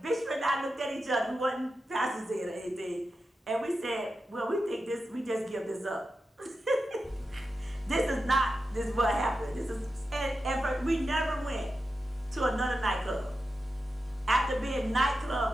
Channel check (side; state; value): both; normal; correlation 0.90